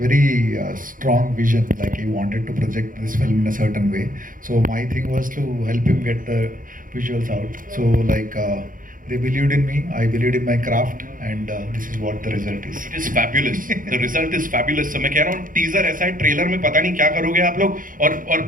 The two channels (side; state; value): left; late; 0.40 ms